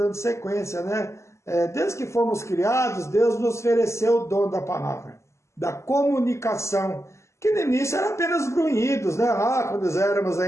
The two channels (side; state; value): right; late; 0.13 ms